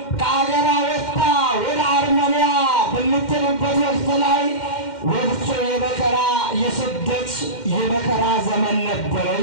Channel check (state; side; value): late; right; 2.1 ms